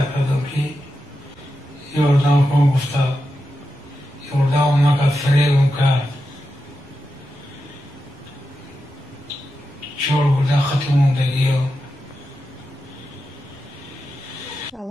кардам ки ёрдам кун, гуфта ёрдамам накард, фиребам кард. 4 бурда хати мондагиё.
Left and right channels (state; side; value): normal; both; correlation 0.89